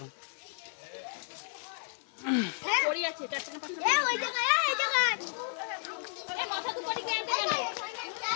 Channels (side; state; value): right; silent; 56 dB below the other